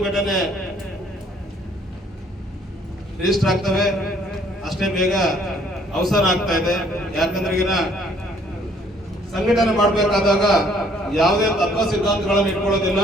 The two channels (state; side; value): normal; both; correlation 0.62